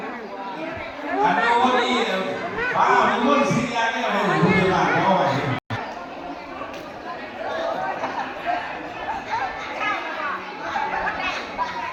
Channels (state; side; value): identical; both; correlation 1.00